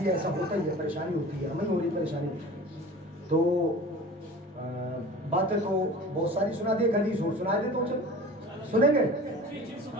ایسا ہوتا ہی ہے، پریشانی ہوتی ہے، ہمیں ہو رہی پریشانی، تو باتیں تو بہت ساری سنا دی، حدیث اور سنا دی، تو سنیں گے۔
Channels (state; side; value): normal; both; correlation 0.40